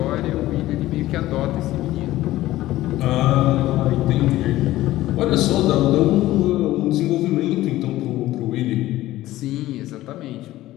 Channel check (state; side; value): quieter; right; 15.8 dB